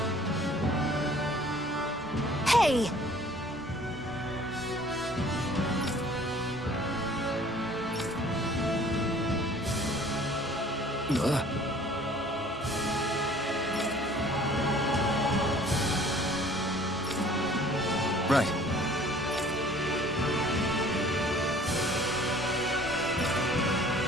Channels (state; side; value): normal; both; correlation 0.52